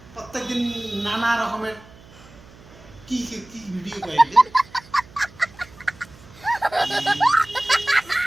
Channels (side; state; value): right; noise; hum, 23 dB below the sound